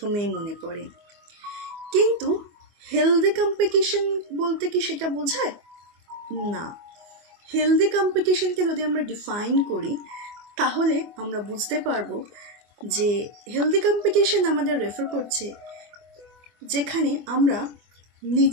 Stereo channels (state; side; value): late; left; 24 ms